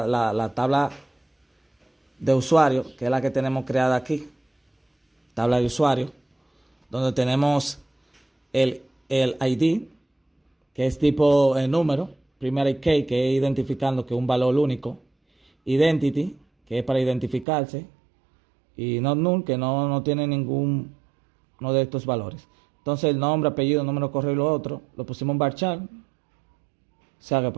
tabla de usuario, que es la que tenemos creada aquí, tabla de usuario, donde tenemos el ID, que es tipo número, primary key, que es identificando que es un valor único, identity, que es para identificarse, y not null, que no tiene ninguno de estos valores. Entonces el nombre, apellido, número, correo y lo otro lo pusimos en varchar, o sea que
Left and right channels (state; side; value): drops out; left; at 17.4 s